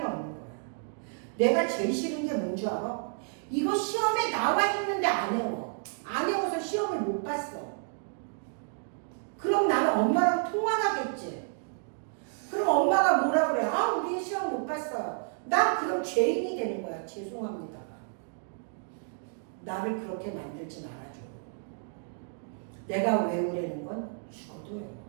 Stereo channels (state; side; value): silent; left; 57 dB below the other